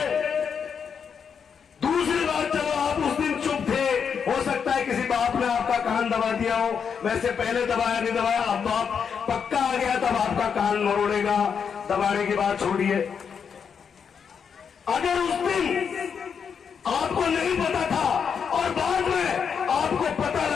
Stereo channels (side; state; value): right; quieter; 6.8 dB